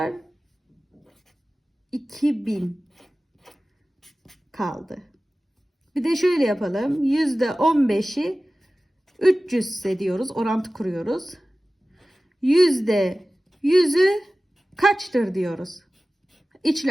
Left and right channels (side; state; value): both; normal; correlation 0.96